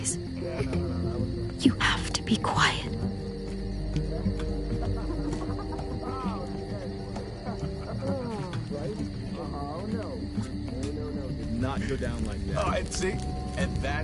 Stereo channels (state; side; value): identical; both; correlation 1.00